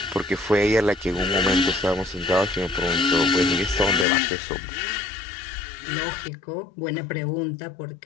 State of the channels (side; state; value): right; drops out; at 4.0 s